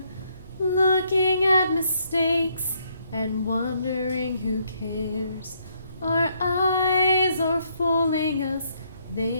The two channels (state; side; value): inverted; both; correlation -0.72